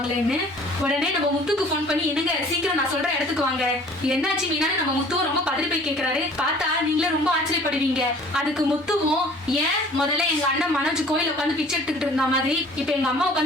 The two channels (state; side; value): normal; both; correlation 0.51